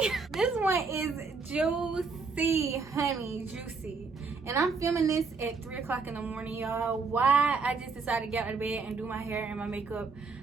This one is juicy, honey, juicy. And I'm filming this at 3 o'clock in the morning, y'all. Why I just decided to get out of bed and do my hair and my makeup,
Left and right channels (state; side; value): quieter; left; 4.6 dB